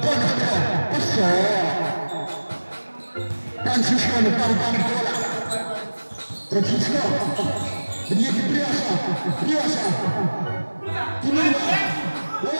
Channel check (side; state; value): both; inverted; correlation -1.00